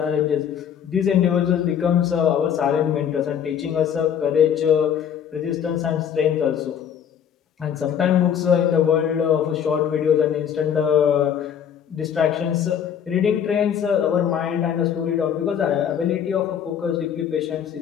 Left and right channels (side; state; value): right; quieter; 8.5 dB